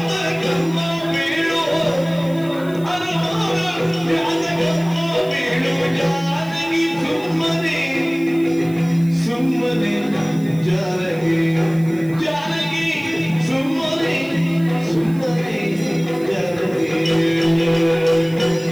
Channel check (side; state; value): right; noise; hiss, 23 dB below the sound